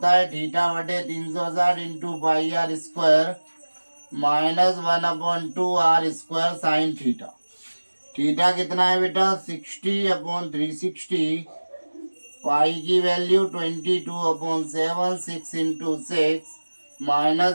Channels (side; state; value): both; inverted; correlation -1.00